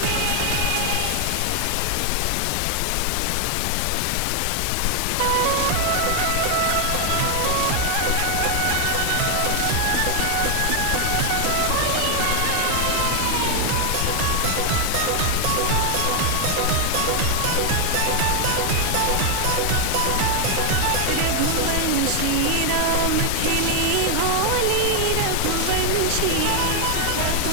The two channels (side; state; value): both; different; correlation 0.00